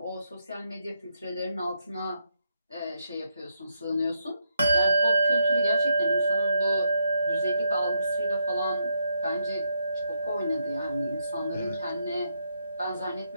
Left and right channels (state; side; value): inverted; both; correlation -0.79